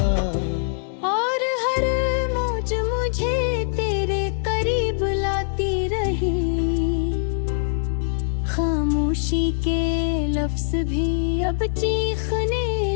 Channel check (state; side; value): silent; right; digital silence